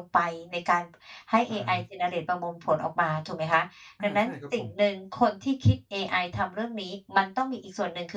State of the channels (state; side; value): identical; both; correlation 1.00